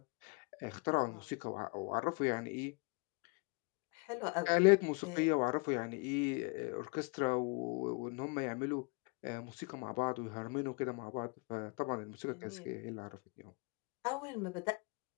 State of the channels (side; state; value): right; quieter; 31.3 dB